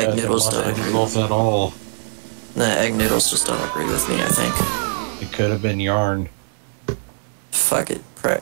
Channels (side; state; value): left; silent; digital silence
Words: noodles don't agree. At all. Nah, egg noodles just don't agree with me, I think. It could have been yarn. Fuck it.